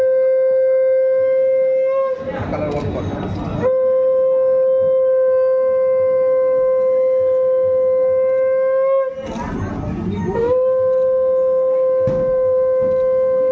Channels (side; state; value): both; identical; correlation 1.00